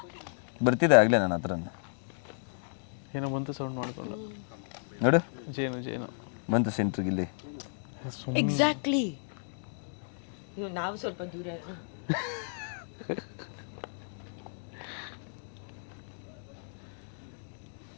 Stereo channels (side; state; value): right; silent; digital silence